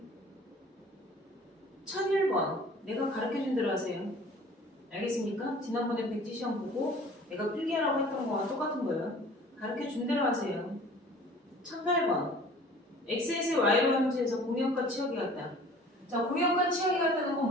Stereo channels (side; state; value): both; normal; correlation 0.48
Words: 1001번 내가 가르쳐준 대로 하세요. 알겠습니까? 지난번에 백지 시험 보고 내가 필기하라고 했던 거와 똑같은 거예요. 가르쳐준 대로 하세요. 1008번 x에서 y로 함수에서 공역과 치역이 같다. 자 공역과 치역이 같다는 건